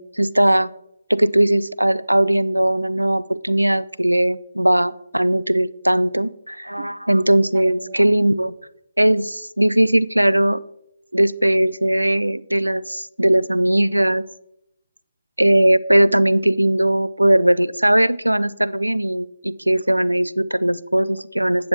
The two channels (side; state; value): both; inverted; correlation -0.99